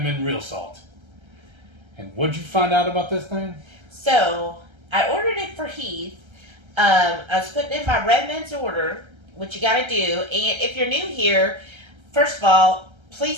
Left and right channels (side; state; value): left; late; 1.3 ms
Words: Real Salt. And what'd you find out about this thing? So, I ordered it for Heath. I was putting in my Redmonds order, which you gotta do. And if you're new here, first of all,